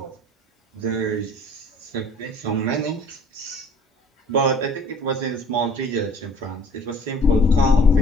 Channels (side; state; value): both; normal; correlation 0.51